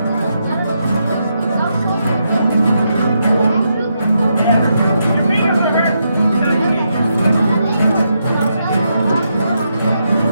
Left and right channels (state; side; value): inverted; both; correlation -0.81